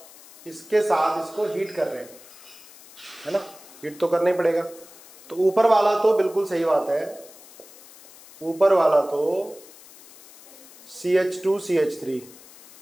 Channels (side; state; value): left; noise; hiss, 21 dB below the sound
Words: इसके साथ इसको हीट कर रहे हैं, है ना, हीट तो करना ही पड़ेगा। तो ऊपर वाला तो बिल्कुल सही बात है, ऊपर वाला तो CH2 CH3